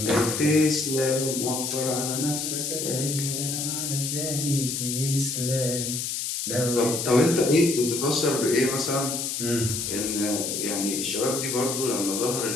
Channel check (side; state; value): left; noise; hiss, 2 dB below the sound